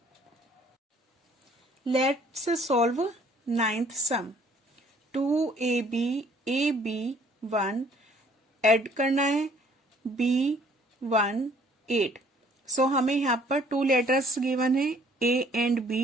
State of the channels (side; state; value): both; normal; correlation 0.59